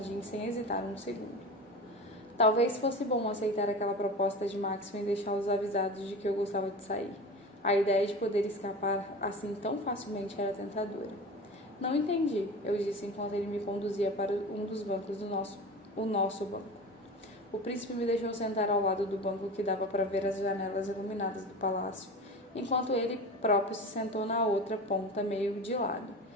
sem hesitar um segundo. Talvez fosse bom aceitar aquela proposta de Maxwell e deixá-los avisados de que eu gostava de sair. A ideia de poder escapar assim tão facilmente era tentadora. Não entendi, eu disse enquanto ele me conduzia para um dos bancos do nosso banco. O príncipe me deixou sentar ao lado do banco que dava para ver as janelas iluminadas do palácio, enquanto ele próprio se sentou na outra ponta meio de lado,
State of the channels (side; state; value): both; normal; correlation 0.31